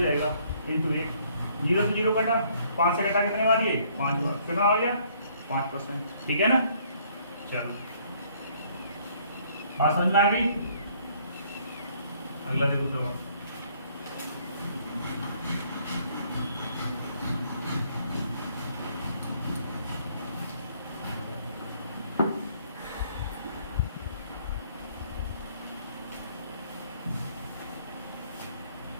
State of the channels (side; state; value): both; inverted; correlation -0.64